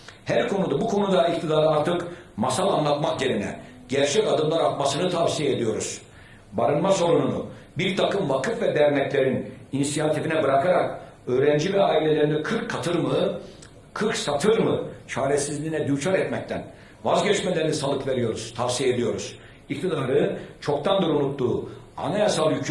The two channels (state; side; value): identical; both; correlation 1.00